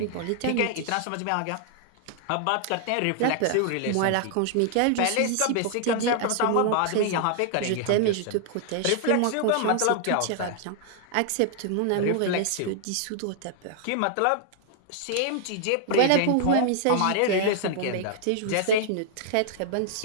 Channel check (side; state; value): both; different; correlation 0.00